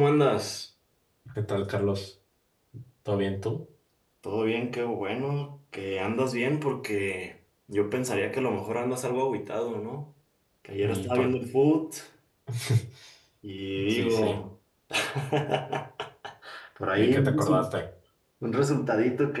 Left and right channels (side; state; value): both; identical; correlation 1.00